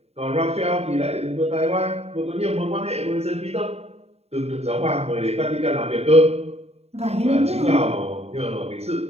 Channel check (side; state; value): left; late; 0.30 ms